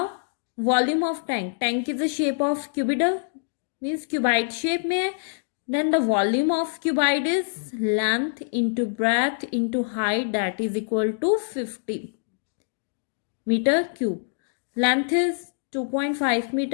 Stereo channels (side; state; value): right; silent; digital silence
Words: volume of tank is the shape of cuboidal, means cuboid shape में. Then the volume of cuboid is length into breadth into height, that is equal to 50 meter cube. Length is 2.5